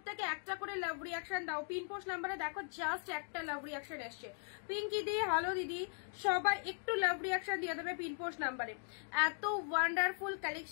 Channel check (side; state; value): right; silent; 52 dB below the other